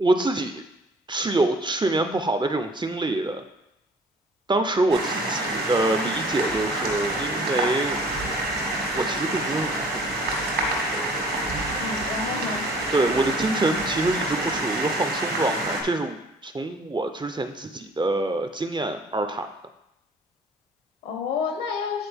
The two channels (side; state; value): both; normal; correlation 0.52